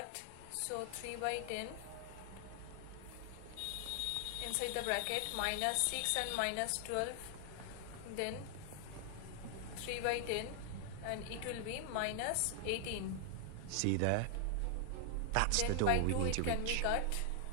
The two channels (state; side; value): different; both; correlation -0.01